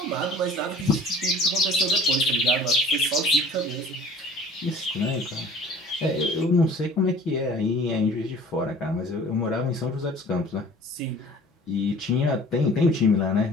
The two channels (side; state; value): both; normal; correlation 0.47